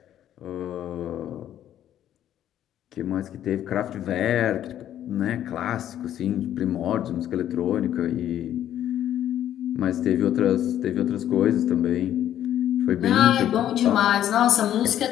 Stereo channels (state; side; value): quieter; right; 11.3 dB